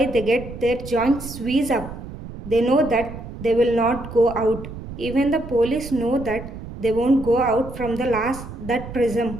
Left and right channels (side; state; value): right; noise; rumble, 12 dB below the sound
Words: they get their joints squeezed up. They know that they will not go out. Even the police know that they won't go out from the that